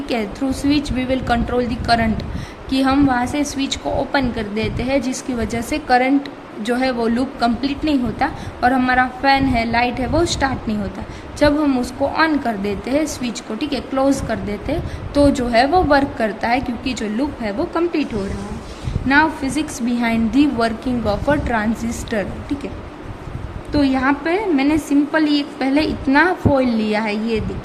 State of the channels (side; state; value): both; identical; correlation 1.00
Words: है, through switch we will control the current, कि हम वहाँ से स्विच को ओपन कर देते हैं जिसकी वजह से करंट जो है वो लूप कंप्लीट नहीं होता और हमारा फैन है, लाइट है, वो स्टार्ट नहीं होता। जब हम उसको ऑन कर देते हैं स्विच को, ठीक है, क्लोज कर देते हैं, तो जो है वो वर्क करता है क्योंकि जो लूप है वो कंप्लीट हो रहा है। Now physics behind the working of a transistor, ठीक है। तो यहाँ पे मैंने सिंपली पहले इतना फॉइल लिया है, ये